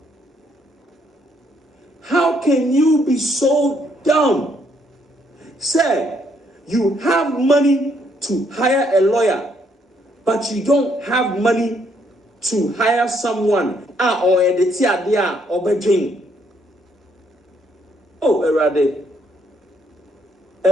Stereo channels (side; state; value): both; normal; correlation 0.71